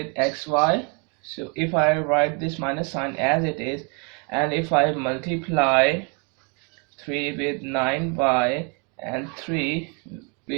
xy. So if I write this minus sign as it is, and if I multiply 3 with 9y and 3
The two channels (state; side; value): quieter; left; 34.6 dB